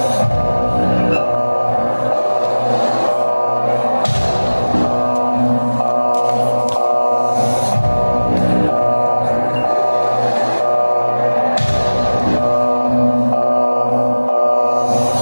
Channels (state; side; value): inverted; both; correlation -1.00